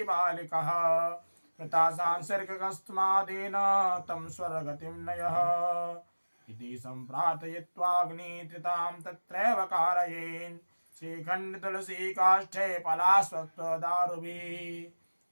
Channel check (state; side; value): inverted; both; correlation -1.00